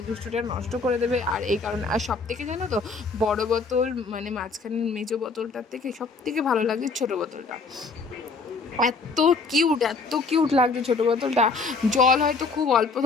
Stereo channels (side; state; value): right; quieter; 4.2 dB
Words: দুষ্টুটা নষ্ট করে দেবে। আর এই কারণে, আর সব থেকে জানো তো, বড় বোতল মানে মাঝখানের মেজো বোতলটার থেকে সব থেকে ভালো লাগে ছোটো বোতলটা। এত কিউট লাগছে ছোটো বোতলটা। জল হয়তো খুব অল্প